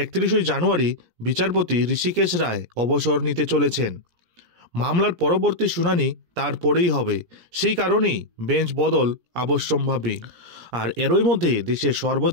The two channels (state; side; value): late; left; 17 ms